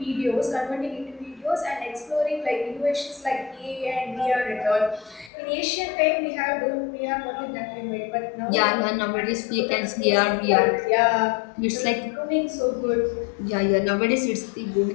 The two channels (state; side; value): drops out; right; at 5.3 s